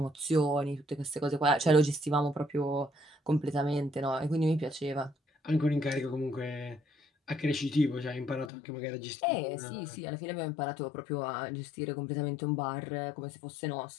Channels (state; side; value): drops out; right; at 8.5 s